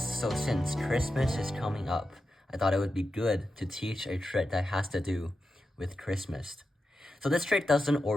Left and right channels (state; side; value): normal; both; correlation 0.90